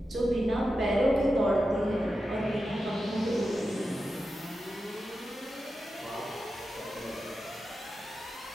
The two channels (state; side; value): normal; both; correlation 0.90